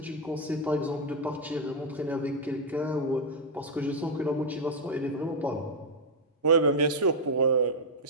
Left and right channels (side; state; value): both; normal; correlation -0.01